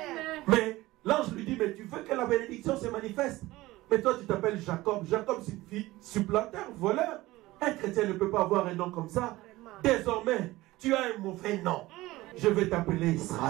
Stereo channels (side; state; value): left; quieter; 18.5 dB